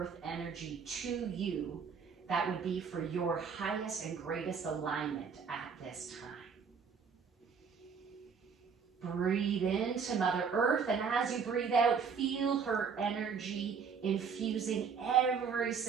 energy to you that would be for your highest and greatest alignment at this time. Breathe into Mother Earth, and as you breathe out, feel her energy infusing every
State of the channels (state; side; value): quieter; left; 6.1 dB